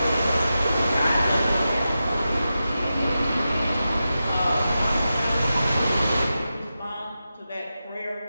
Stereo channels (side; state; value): both; inverted; correlation -0.91